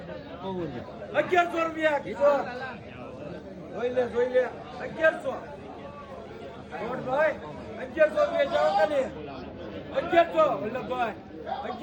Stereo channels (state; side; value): identical; both; correlation 1.00